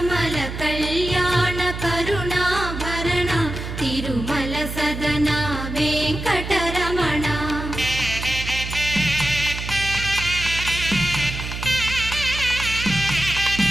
కళ్యాణ కరుణాభరణ తిరుమల సదన వెంకటరమణ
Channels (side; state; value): right; noise; hum, 7 dB below the sound